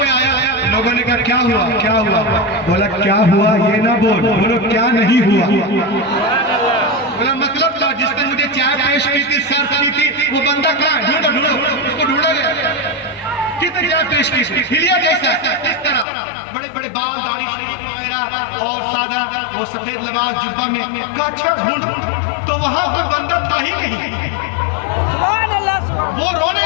आया। लोगों ने कहा क्या हुआ, क्या हुआ? बोला क्या हुआ ये ना बोलो क्या नहीं हुआ। बोला मतलब था जिसने मुझे चाय पेश की थी, सर्व की थी, वो बंदा कहाँ? ढूंढो ढूंढो, उसको ढूंढा गया। कितने चाय पेश की? हिलिया जैसा, इस तरह बड़े बड़े बाल, दाढ़ी वगैरह और सादा वो सफेद लिबास जुब्बा में। अच्छा ढूंढ, तो वहां पर बंदा था ही नहीं। वो रोने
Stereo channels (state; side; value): drops out; right; at 16.1 s